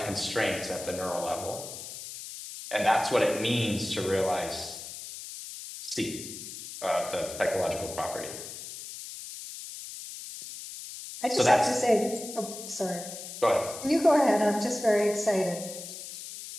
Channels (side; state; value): left; noise; hiss, 11 dB below the sound